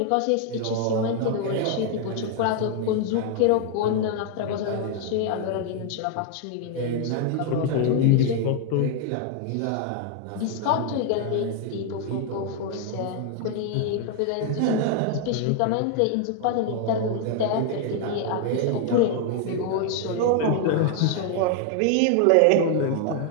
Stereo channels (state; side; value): different; both; correlation 0.00